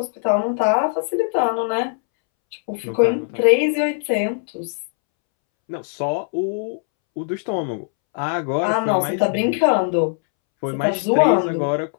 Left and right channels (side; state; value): right; silent; 65 dB below the other